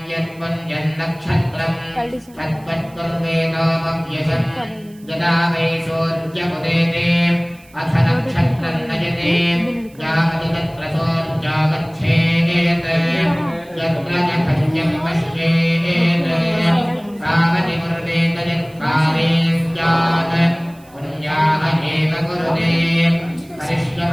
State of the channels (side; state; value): right; noise; hiss, 28 dB below the sound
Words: यत्पुण्यन्नक्षत्रं तत्त्वत्कुर्वेदोपव्यशम् यदा वै सोऽर्जमुदेते अथ नक्षत्रं नयते यावति तत्र सोऽर्जागच्छेत् यत्र च भज्यं पश्येत् तावति कुरुतेत यत्काले स्यात् पुण्याः एव कुरुते।